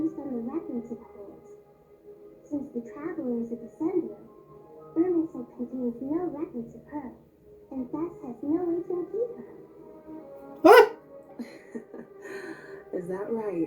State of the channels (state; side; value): identical; both; correlation 1.00